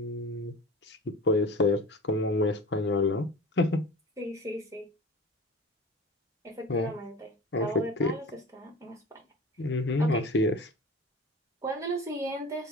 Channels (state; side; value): normal; both; correlation 0.36